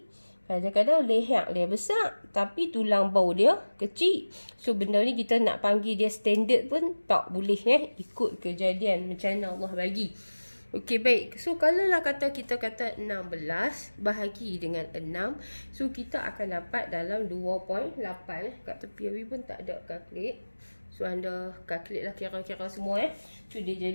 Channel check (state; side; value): inverted; both; correlation -1.00